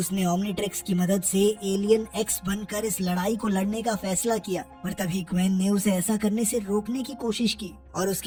ओमनीट्रिक्स की मदद से एलियन एक्स बनकर इस लड़ाई को लड़ने का फैसला किया, पर तभी ग्वेन ने उसे ऐसा करने से रोकने की कोशिश की और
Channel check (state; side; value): identical; both; correlation 1.00